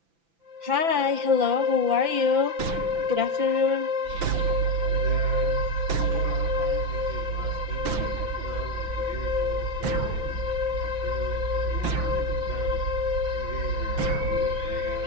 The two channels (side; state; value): left; late; 5.9 ms